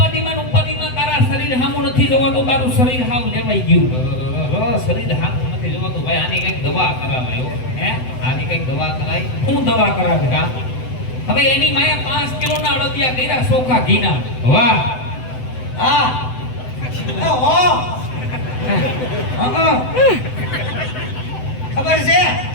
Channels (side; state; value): right; late; 7.9 ms